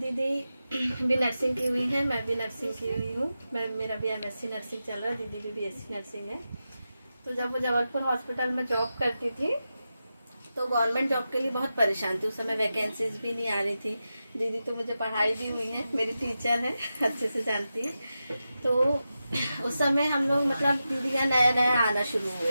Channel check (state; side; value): inverted; both; correlation -0.91